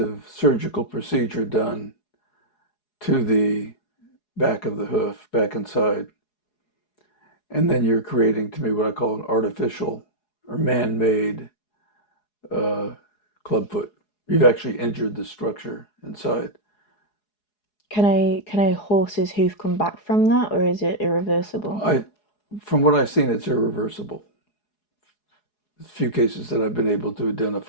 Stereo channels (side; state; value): right; late; 4.8 ms